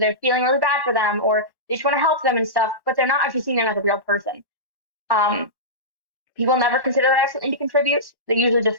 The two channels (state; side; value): late; left; 1.1 ms